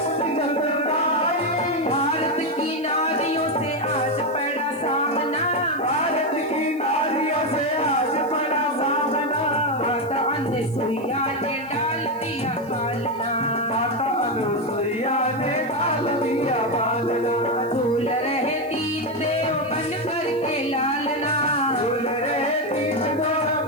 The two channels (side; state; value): right; noise; hiss, 26 dB below the sound